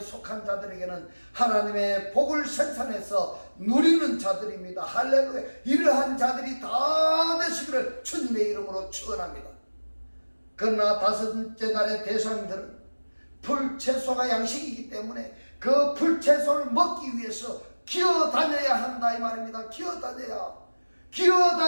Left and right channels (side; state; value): both; inverted; correlation -1.00